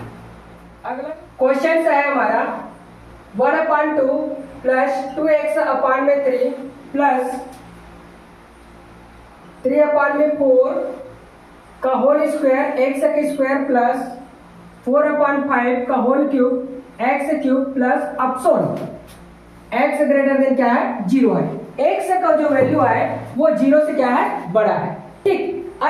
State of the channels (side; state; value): both; identical; correlation 1.00